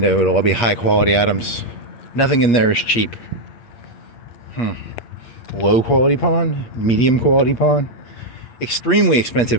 It'll all be high quality items. Nothing in there is cheap. Low quality pawn, medium quality pawn, extremely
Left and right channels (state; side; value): late; right; 8.5 ms